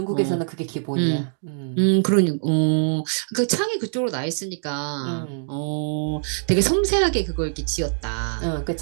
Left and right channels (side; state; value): left; silent; digital silence